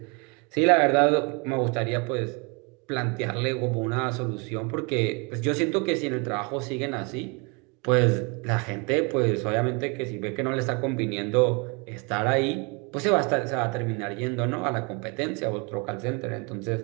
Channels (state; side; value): quieter; left; 31.4 dB